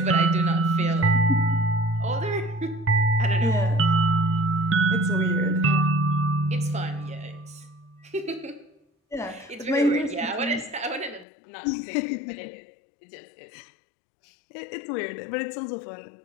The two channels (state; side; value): drops out; right; at 11.2 s